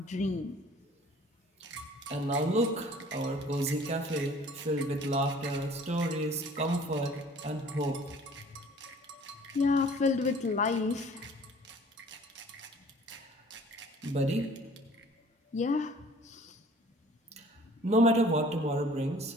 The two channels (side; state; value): both; normal; correlation 0.51